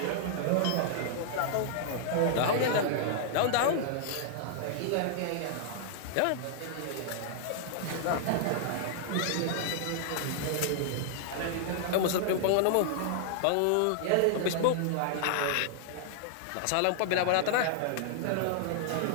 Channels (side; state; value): both; different; correlation -0.01